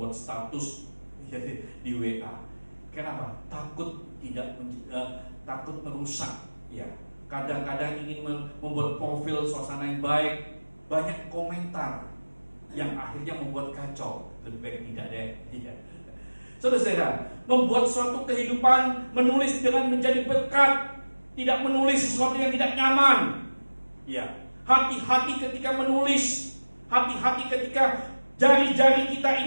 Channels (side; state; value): both; inverted; correlation -1.00